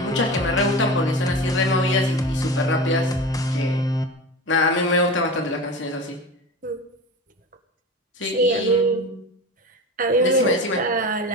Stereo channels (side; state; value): both; normal; correlation 0.29